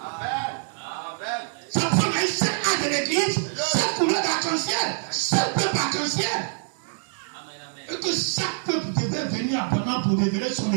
Ça prend un seul âge de l'église, seule couleur d'arc-en-ciel, seul peuple arc-en-ciel. Et que chaque peuple devait venir abondamment pour révéler son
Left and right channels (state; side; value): silent; left; 61 dB below the other